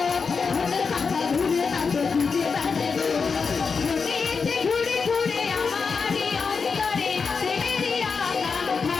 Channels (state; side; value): quieter; right; 5.2 dB